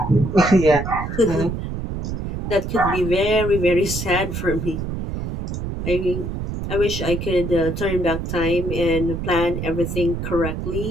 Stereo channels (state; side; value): noise; right; rumble, 4 dB below the sound